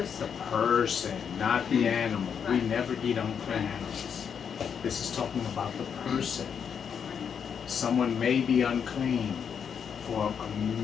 The person, not the animal. We Right. never eat unclean Right. animals. This is talking about the person. Someone may be unclean for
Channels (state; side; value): quieter; right; 7.3 dB